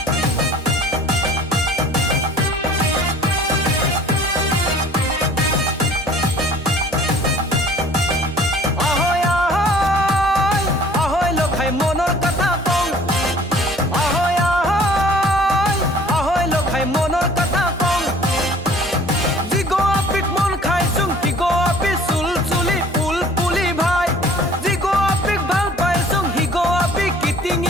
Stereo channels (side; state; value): both; normal; correlation 0.51